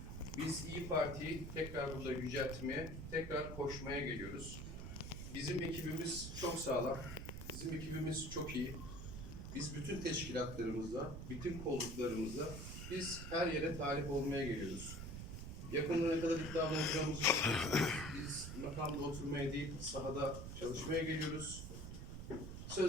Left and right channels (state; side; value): noise; right; rumble, 7 dB below the sound